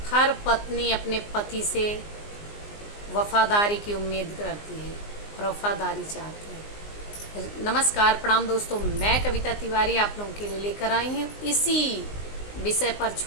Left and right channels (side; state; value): right; late; 19 ms